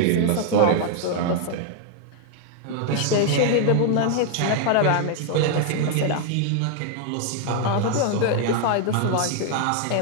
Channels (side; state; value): both; different; correlation 0.00